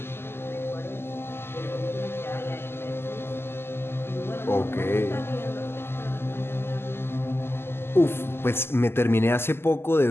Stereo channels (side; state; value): right; late; 0.12 ms